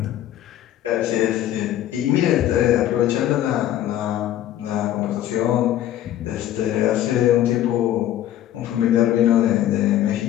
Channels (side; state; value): right; quieter; 12.4 dB